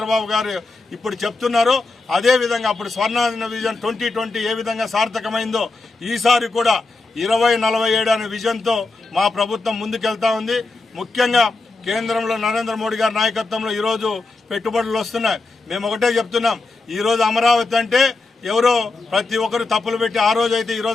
గారు ఇప్పుడు చెప్తున్నారో అదే విధంగా అప్పుడు స్వర్ణ విజన్ 2020 ఏ విధంగా సార్థకమైందో ఈసారి కూడా 2047 అనే విజన్ తో మా ప్రభుత్వం ముందుకెళ్తా ఉంది. ముఖ్యంగా కేంద్రంలో నరేంద్ర మోడీ గారి నాయకత్వంలో ఈ రోజు పెట్టుబడులు వస్తున్నాయి. మేము ఒకటే చెప్తున్నాం, ఈ రోజు అమరావతి అంటే ఎవరో ప్రతి ఒక్కరు తప్పులు పెట్టి ఆ రోజు అయితే ఈ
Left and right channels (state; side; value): quieter; right; 3.6 dB